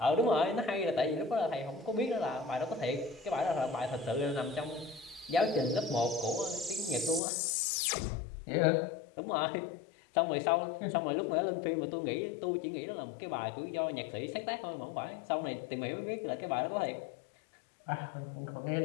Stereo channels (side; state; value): right; drops out; at 7.2 s